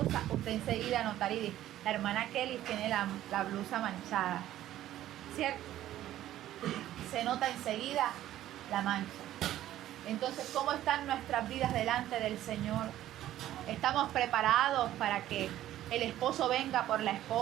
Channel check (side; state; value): left; quieter; 13.2 dB